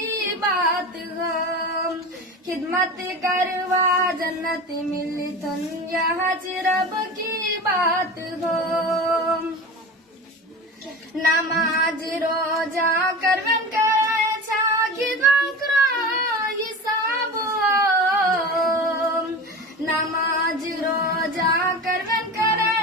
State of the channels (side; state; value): both; normal; correlation 0.30